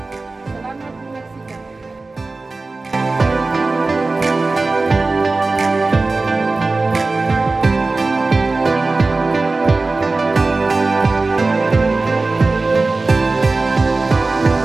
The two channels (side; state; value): left; quieter; 3.5 dB